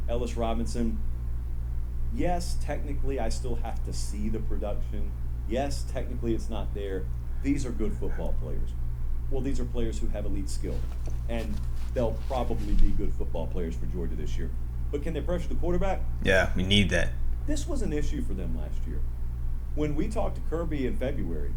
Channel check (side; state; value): both; identical; correlation 1.00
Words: Ellis Robinson. Yes, technically, I still have to see the production. Yes, technically, it's not there. These are good football players. Well, these are players who have elite skill. And they'll probably be good football players for Georgia this year. But can they pressure the quarterback? Yeah, we need that. This was an issue for them last year. When we talked to Kirby in February,